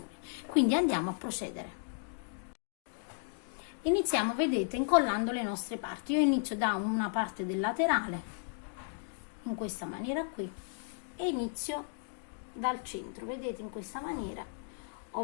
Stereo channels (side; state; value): right; silent; digital silence